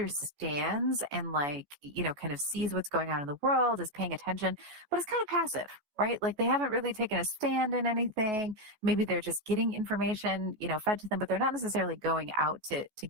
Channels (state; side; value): late; left; 14 ms